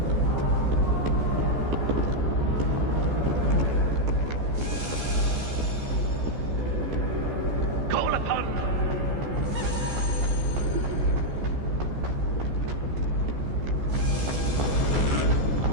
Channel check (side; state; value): left; late; 14 ms